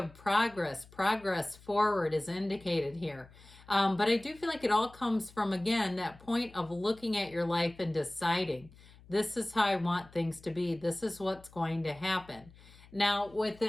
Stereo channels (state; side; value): noise; left; hum, 23 dB below the sound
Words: progress. Progress forward is indicated here. But I do feel like it all comes from, again, that point of looking at your life and deciding, this is how I want things to be. This is what's going to happen. Now, with